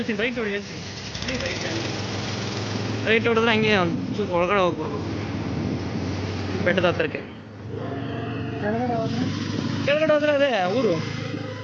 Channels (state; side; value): identical; both; correlation 1.00